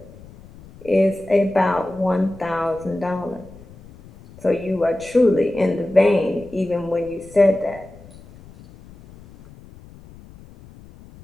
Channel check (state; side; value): noise; left; rumble, 21 dB below the sound